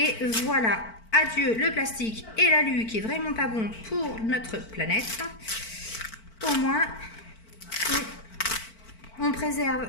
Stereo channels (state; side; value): late; right; 4.5 ms